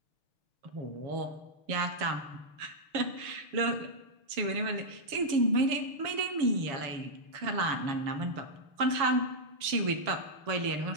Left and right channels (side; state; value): left; late; 7.1 ms